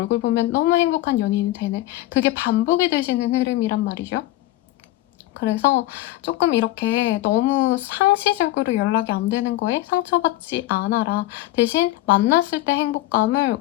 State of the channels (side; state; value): right; quieter; 16.4 dB